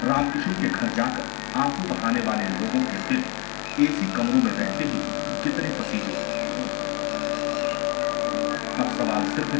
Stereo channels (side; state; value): right; quieter; 31.0 dB